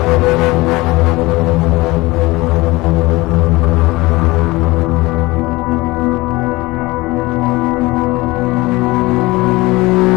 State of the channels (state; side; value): quieter; right; 21.5 dB